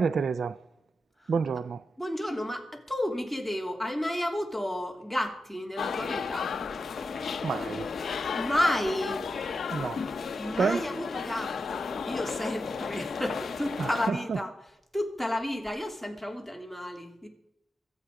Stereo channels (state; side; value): normal; both; correlation 0.88